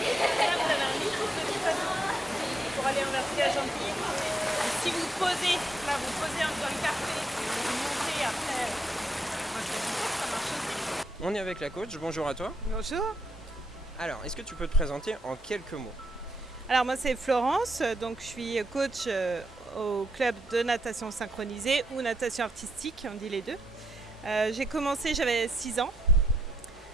Là, vous avez un micro petit bateau pour aller en vertige gentil. Si vous posez, là vous posez dans le carré, vous montez après. Ça marche aussi. On est avec la coach, bonjour à toi. Bonjour. Alors, est-ce que tu peux te présenter en quelques mots? Alors moi c'est Florence, donc je suis coach au club de natation synchronisée ou natation artistique, on dit les deux. J'ai commencé, j'avais 6 ans,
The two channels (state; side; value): normal; both; correlation 0.78